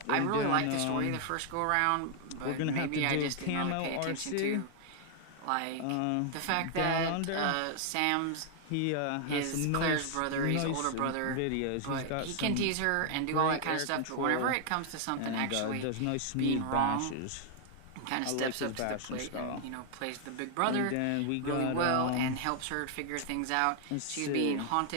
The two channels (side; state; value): both; different; correlation 0.00